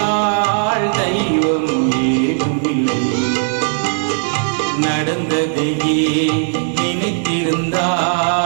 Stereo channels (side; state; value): left; silent; 59 dB below the other